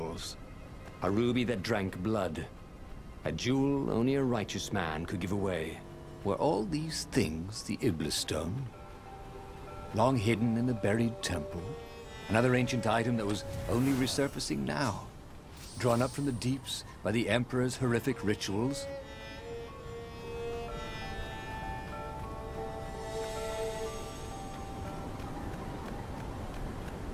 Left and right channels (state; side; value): identical; both; correlation 1.00